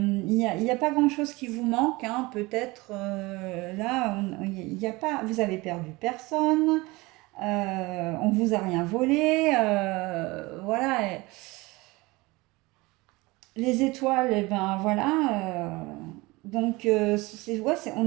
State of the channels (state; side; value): quieter; left; 22.7 dB